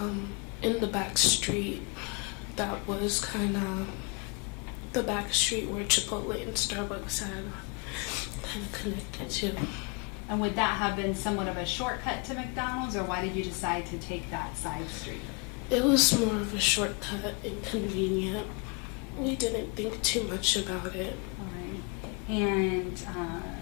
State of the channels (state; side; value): quieter; right; 33.3 dB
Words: in the back street. That was kind of the back street where Chipotle and Starbucks had kind of connected to. And would that have been somewhat of a shortcut to McDonald's, or why did you decide to take that side street? It was more of a shortcut and convenient. We didn't think too much about it. All right. And